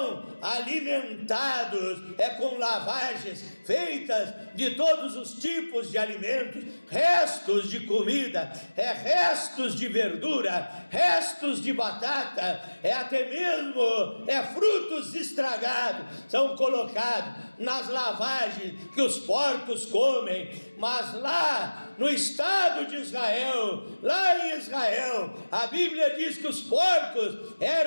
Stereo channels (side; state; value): both; inverted; correlation -1.00